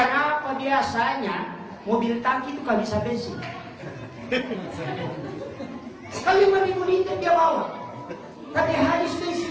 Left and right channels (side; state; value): both; identical; correlation 1.00